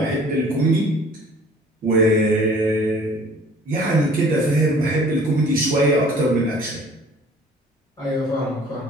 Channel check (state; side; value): normal; both; correlation 0.51